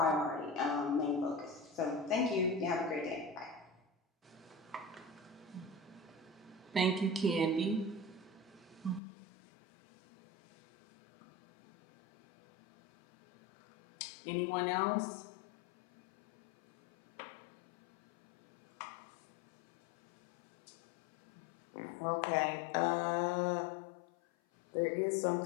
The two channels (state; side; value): drops out; right; at 9.0 s